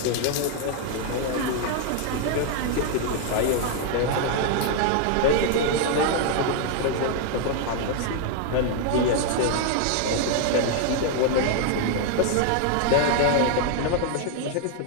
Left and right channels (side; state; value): both; different; correlation 0.00